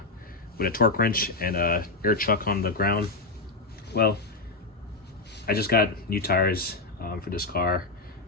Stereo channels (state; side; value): quieter; right; 3.4 dB